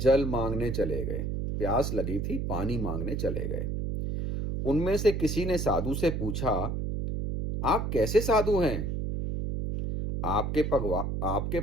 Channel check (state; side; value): noise; right; hum, 2 dB below the sound